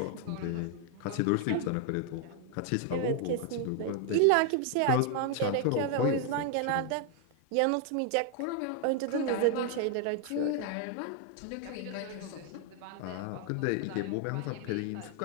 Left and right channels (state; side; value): different; both; correlation 0.00